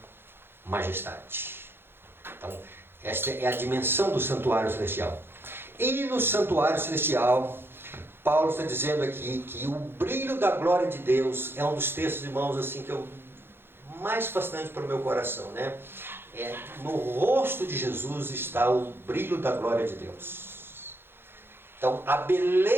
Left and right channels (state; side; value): late; left; 0.11 ms